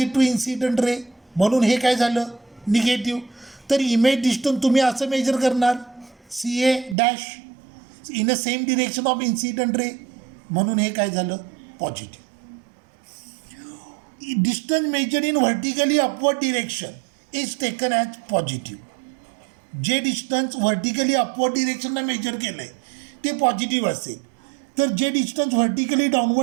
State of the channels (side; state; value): left; drops out; at 7.0 s